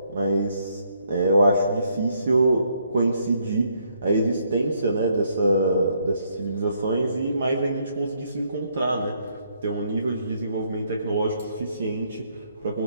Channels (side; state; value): both; inverted; correlation -0.71